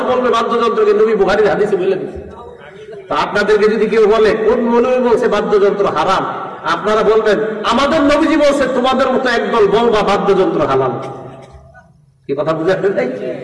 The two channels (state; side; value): identical; both; correlation 1.00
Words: বলবে বাদ্যযন্ত্রকে, নবী বুখারীর হাদিসে বলে দিয়েছে। তো আপনাদেরকে যদি কেউ বলে কোন মৌলবী বলছে বাদ্যযন্ত্র হারাম, আপনারা বলবেন আমাদের নবীজি বলছে, তোমাদের মতো একদল বলবা বাদ্যযন্ত্র হালাল। কি কথা বুঝে আসলে তাই